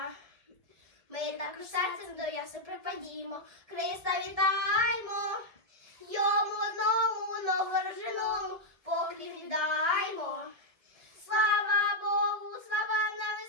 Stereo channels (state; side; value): late; left; 1.9 ms